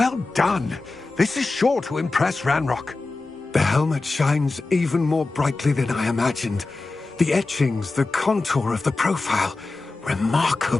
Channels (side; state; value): right; quieter; 3.5 dB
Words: done. This is sure to impress Ranrock. The helmet shines even more brightly than I imagined. The etchings, the contour of the profile.